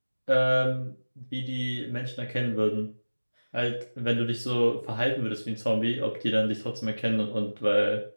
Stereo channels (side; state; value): both; inverted; correlation -1.00